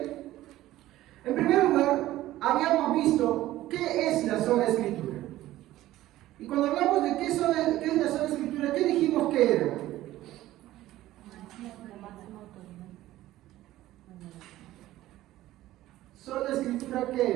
En primer lugar, habíamos visto qué es la sola Escritura. Y cuando hablamos de qué es la sola Escritura, ¿qué dijimos que era? ¿Sola Escritura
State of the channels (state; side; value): quieter; left; 15.3 dB